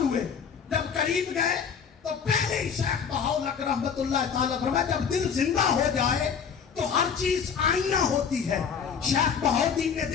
ہوئے. جب قریب گئے تو پہلے ہی شیخ بہاؤالحق رحمت اللہ تعالیٰ فرمایا جب دل زندہ ہو جائے تو ہر چیز آئینہ ہوتی ہے. شیخ بہاؤالدین نے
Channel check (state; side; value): quieter; right; 6.8 dB